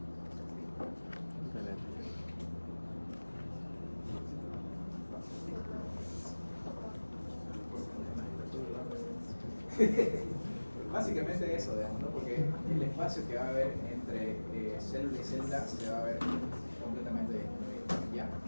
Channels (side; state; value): both; inverted; correlation -1.00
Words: Básicamente eso, digamos, ¿no? Porque el espacio que va a haber entre célula y célula se va a ver completamente ya.